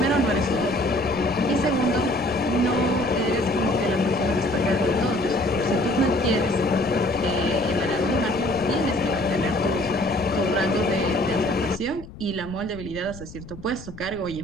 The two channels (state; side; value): noise; left; rumble, 16 dB below the sound